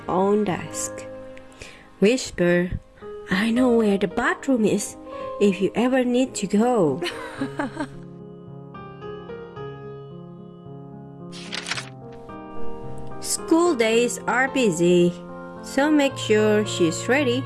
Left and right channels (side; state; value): both; identical; correlation 1.00